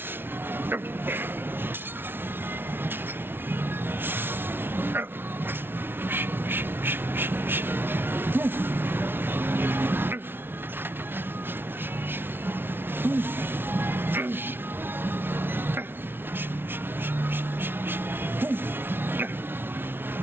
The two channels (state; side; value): late; left; 0.11 ms